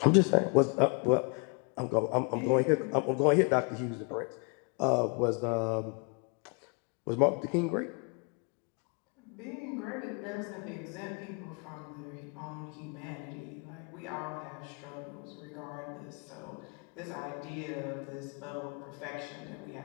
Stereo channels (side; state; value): right; quieter; 36.0 dB